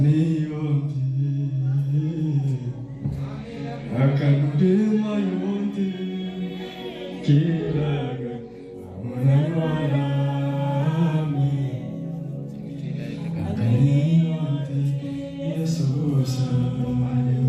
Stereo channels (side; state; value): both; identical; correlation 1.00